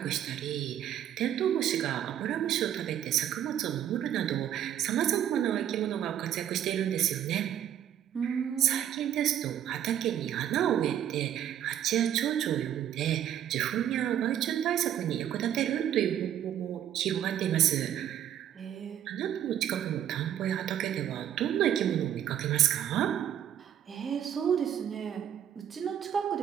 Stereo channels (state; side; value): quieter; left; 10.4 dB